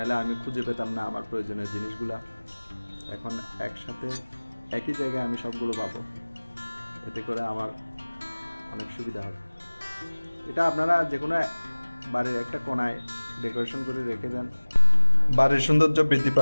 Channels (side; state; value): both; inverted; correlation -1.00